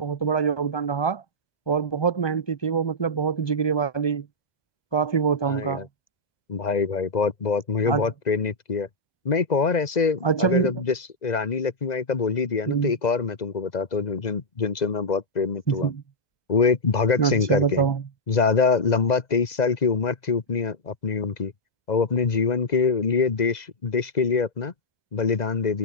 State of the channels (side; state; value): right; late; 2.0 ms